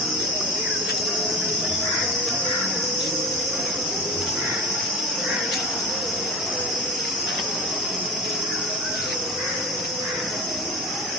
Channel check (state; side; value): normal; both; correlation 0.30